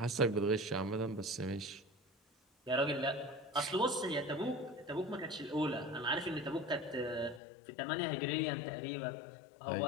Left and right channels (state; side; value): drops out; right; at 7.4 s